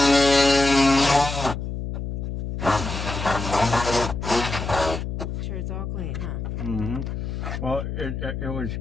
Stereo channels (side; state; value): left; noise; hum, 5 dB below the sound